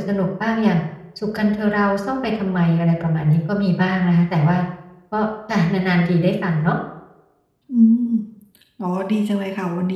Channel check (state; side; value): identical; both; correlation 1.00